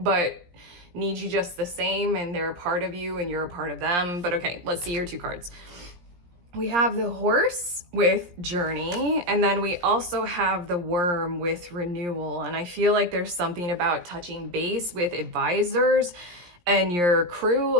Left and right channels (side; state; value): left; late; 17 ms